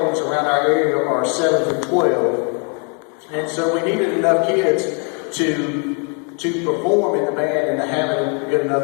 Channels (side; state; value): right; quieter; 38.0 dB